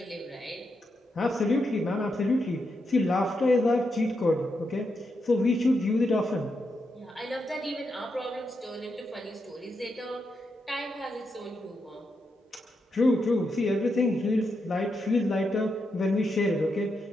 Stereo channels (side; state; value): both; normal; correlation 0.84